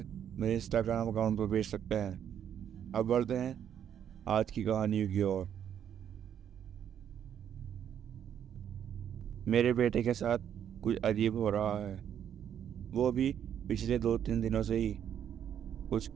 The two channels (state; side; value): quieter; left; 9.3 dB